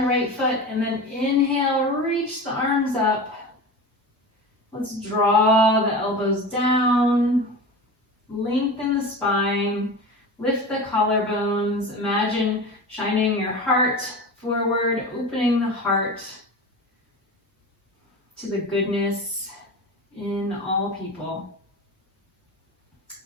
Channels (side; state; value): both; normal; correlation 0.30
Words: right foot, and then inhale, reach the arms up. Let's draw the elbows down, lengthen the spine, lift the collarbones. Imagine shining your heart forward, opening the heart to the goodness in all people.